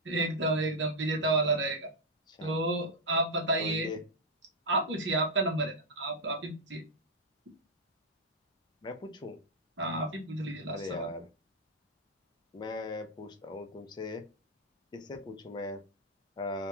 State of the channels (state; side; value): normal; both; correlation -0.04